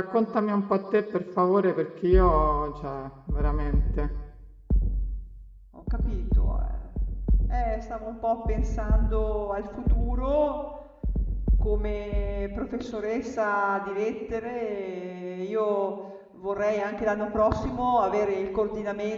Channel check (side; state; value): both; identical; correlation 1.00